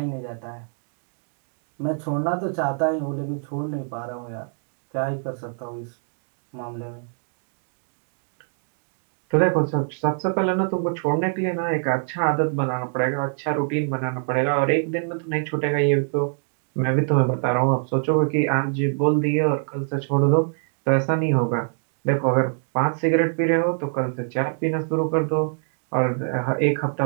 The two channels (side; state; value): left; silent; 57 dB below the other